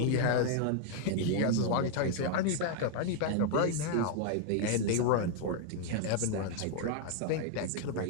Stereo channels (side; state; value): both; different; correlation 0.00